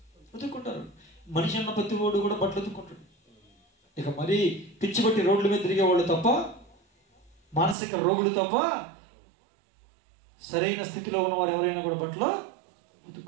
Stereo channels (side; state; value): left; drops out; at 7.8 s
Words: ఉతుక్కుంటారు. మనిషి అన్న ప్రతి వాడు కూడా బట్టలు ఉతుక్కుంటాడు. ఇక మరీ పిచ్చి పట్టి రోడ్ల మీద తిరిగేవాళ్ళు తప్ప, మానసిక రోగులు తప్ప, సరైన స్థితిలో ఉన్నవారు ఎవరైనా కూడా బట్టలు